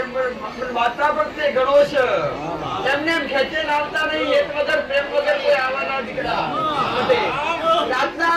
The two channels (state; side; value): identical; both; correlation 1.00